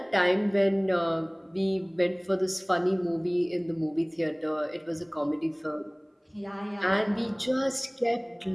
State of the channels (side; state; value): both; identical; correlation 1.00